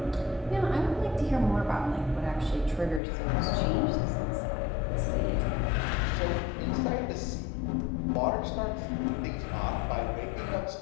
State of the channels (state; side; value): drops out; right; at 3.0 s